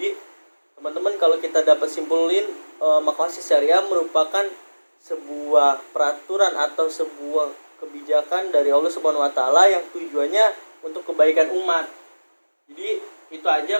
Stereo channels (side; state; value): both; inverted; correlation -1.00